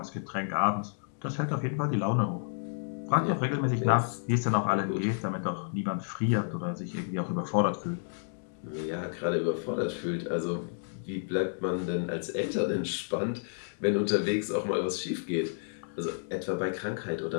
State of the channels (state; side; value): silent; right; digital silence